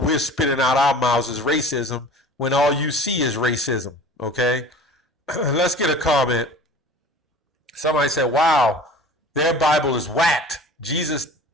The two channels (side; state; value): both; normal; correlation 0.41